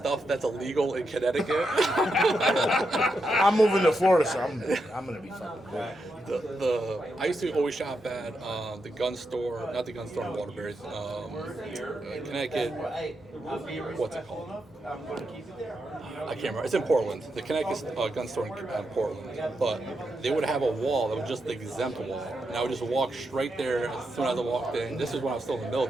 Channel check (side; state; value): both; normal; correlation 0.84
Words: that's illegal in Connecticut. I'm moving to Florida, so I'm gonna be fucking good. I used to always shop at the gun store, not the gun store in Waterbury, Connecticut, what's it called? I can't remember. It's in Portland, the Connecticut gun store in Portland. But they would have a wall that was just the exempt wall. And I would just walk straight there as soon as I walked in. This is when I was still in the